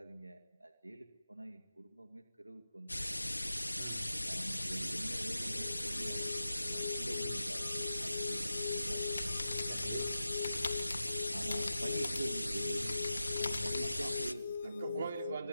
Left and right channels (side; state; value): both; inverted; correlation -0.92